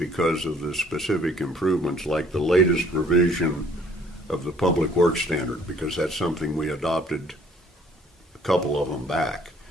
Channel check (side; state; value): both; normal; correlation 0.59